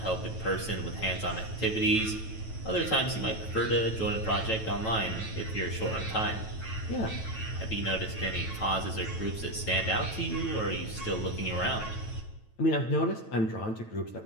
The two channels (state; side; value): late; right; 9.1 ms